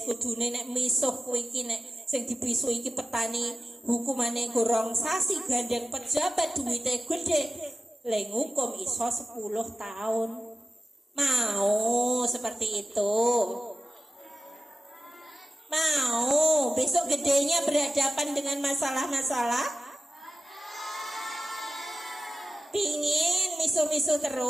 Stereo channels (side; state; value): both; normal; correlation 0.94